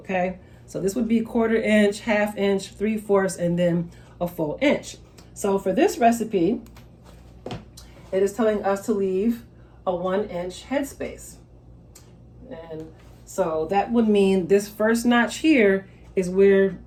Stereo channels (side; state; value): both; identical; correlation 1.00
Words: So this would be 1/4 inch, 1/2 inch, 3/4, and then a full inch. So for this recipe, it is telling us to leave a 1 inch headspace. And so that would mean this first notch here is where